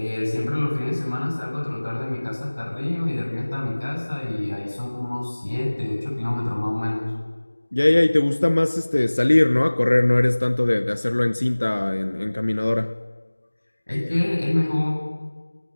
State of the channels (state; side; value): inverted; both; correlation -1.00